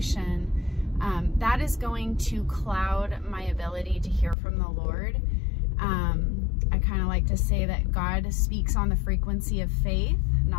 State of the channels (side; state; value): right; drops out; at 4.4 s